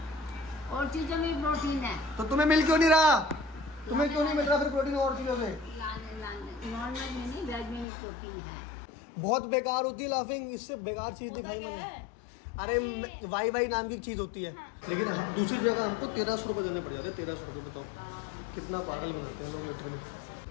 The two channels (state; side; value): drops out; right; at 7.9 s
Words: और चीजों में प्रोटीन है। तो तुम्हें मिल क्यों नहीं रहा? तुम्हें क्यों नहीं मिल रहा फिर प्रोटीन और चीजों से? नॉर्मल में नहीं, वेज में भी प्रोटीन है। बहुत बेकार होती है लाफिंग, इससे बेकार चीज दिखाई मैंने। अरे वाई वाई नाम की चीज होती है। लेकिन दूसरी जगह हमको 1300 रुपये देने पड़ जाते हैं। 1300 रुपये बताओ कितना पागल बनाते हैं लोग लीटर में।